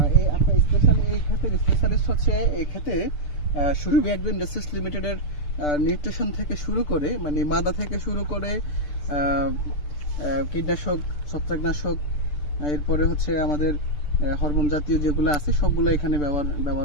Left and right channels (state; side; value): late; right; 6.7 ms